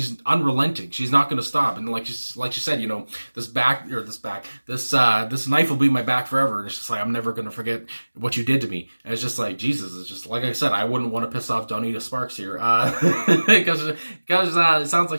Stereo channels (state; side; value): inverted; both; correlation -1.00